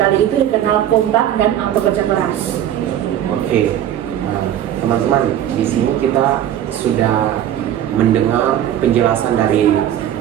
itu dikenal kompak dan bekerja keras. Oke, teman-teman, di sini kita sudah mendengar penjelasan dari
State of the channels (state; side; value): quieter; left; 11.0 dB